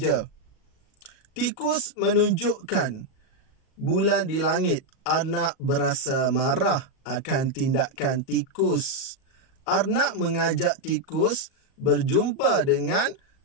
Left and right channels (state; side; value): late; right; 37 ms